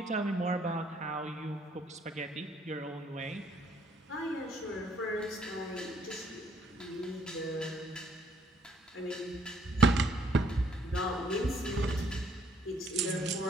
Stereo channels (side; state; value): both; normal; correlation 0.67